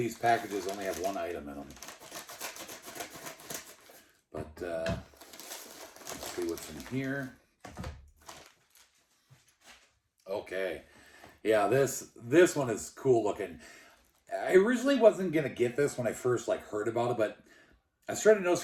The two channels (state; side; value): identical; both; correlation 1.00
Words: packages only have one item in them. But let's see what's in here. Okay. Yeah, this one is cool looking. I originally wasn't going to get this when I first heard about it, but I started